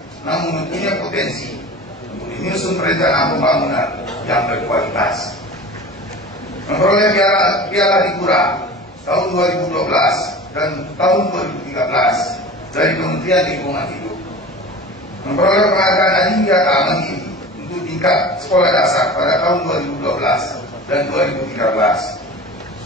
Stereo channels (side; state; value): both; normal; correlation 0.36